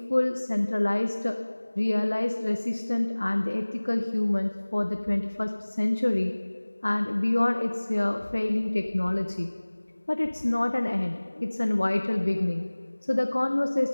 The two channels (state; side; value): inverted; both; correlation -1.00